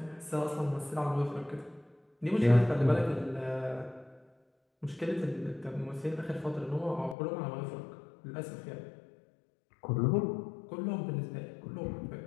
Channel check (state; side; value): drops out; right; at 7.2 s